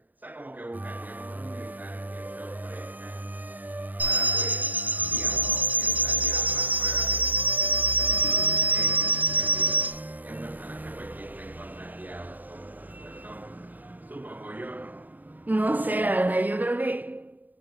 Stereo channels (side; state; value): left; late; 0.085 ms